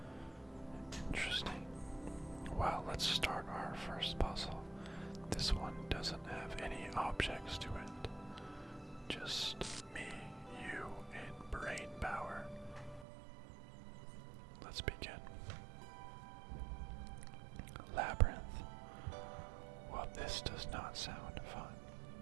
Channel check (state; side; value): drops out; left; at 13.1 s